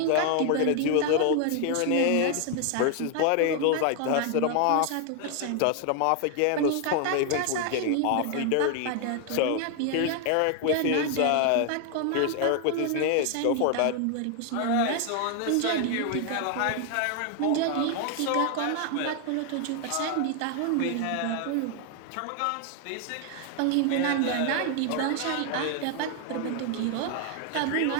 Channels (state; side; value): different; both; correlation 0.00